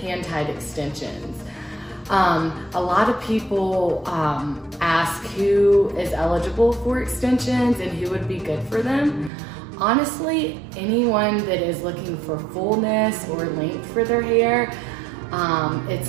extensions. A lot of people ask who is eligible for extensions and who would be good for them. Honestly, anyone that is looking for fullness or length for their hair,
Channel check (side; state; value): left; drops out; at 9.3 s